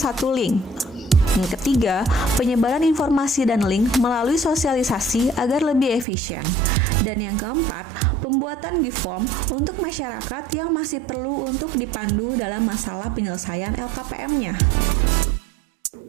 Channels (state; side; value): drops out; left; at 6.1 s